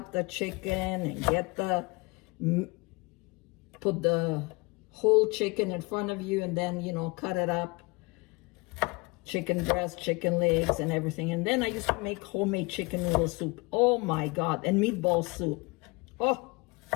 the chicken and get put the whole chicken in front of you and then, you know, cut it up. Chicken breast, chicken legs, and everything. And then I used to make homemade chicken noodle soup. Oh my God. And meatball soup. Oh.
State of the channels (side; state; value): right; quieter; 26.5 dB